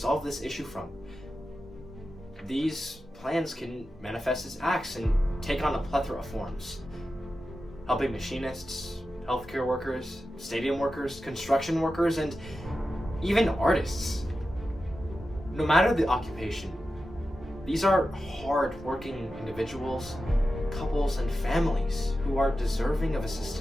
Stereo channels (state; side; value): normal; both; correlation 0.92